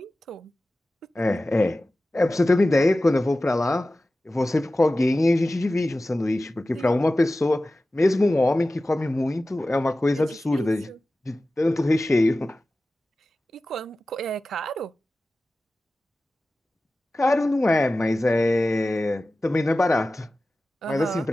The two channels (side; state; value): both; normal; correlation 0.96